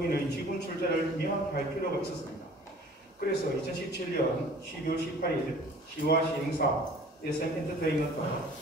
지분 출자를 명확히 할 필요가 있었습니다. 그래서 2017년 12월 18일 시와 시행사 SM 엔터테인먼트,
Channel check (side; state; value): both; normal; correlation 0.48